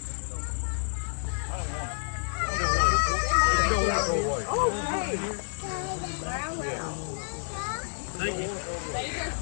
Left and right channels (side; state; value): right; silent; 57 dB below the other